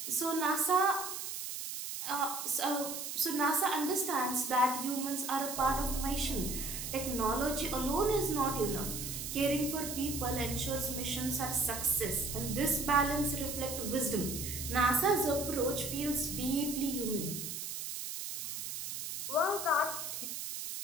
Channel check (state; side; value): noise; right; hiss, 6 dB below the sound